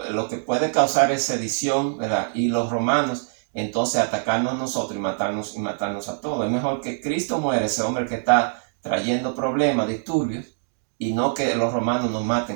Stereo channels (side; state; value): left; silent; digital silence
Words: lo que puede causar es sedición, ¿verdad?, y los romanos, entonces atacarnos a nosotros y matarnos a todos. Es mejor que Cristo muera, ese hombre que está trayendo problemas, disturbios, y no que los romanos nos